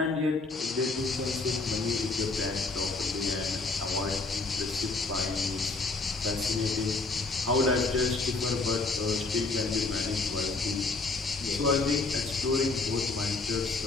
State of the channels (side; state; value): right; quieter; 3.6 dB